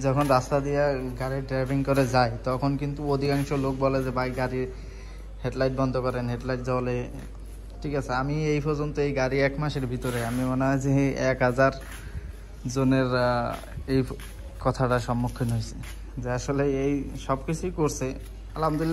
যখন রাস্তা দিয়ে গাড়ি ড্রাইভিং করে যাই তখন কিন্তু অধিকাংশ লোক বলে যে ভাই গাড়ির হেডলাইট বন্ধ করেন, হেডলাইট জ্বলে, ঠিক আছে। আমি এই পর্যন্ত এই গাড়ি 1 মাসের ভিতরে আমি মনে হয় যে 1000 জনের এই কথাটার সম্মুখীন হয়েছে যে আসলে এই সব কিছুই করছে,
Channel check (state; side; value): identical; both; correlation 1.00